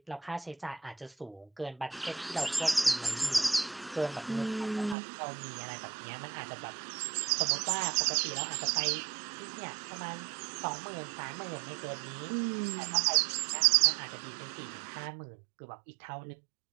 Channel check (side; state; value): left; drops out; at 5.0 s